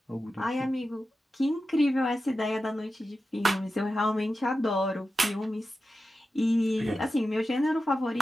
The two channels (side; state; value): both; normal; correlation 0.92